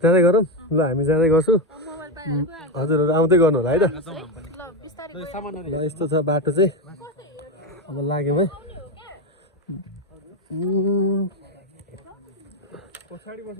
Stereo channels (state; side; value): normal; both; correlation 0.11